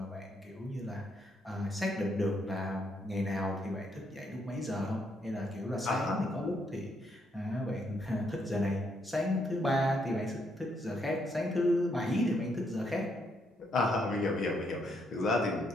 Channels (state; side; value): normal; both; correlation 0.75